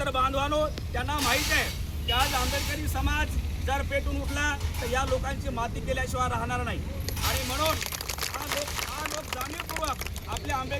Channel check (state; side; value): identical; both; correlation 1.00